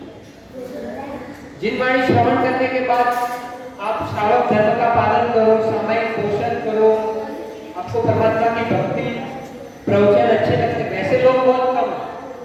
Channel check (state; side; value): identical; both; correlation 1.00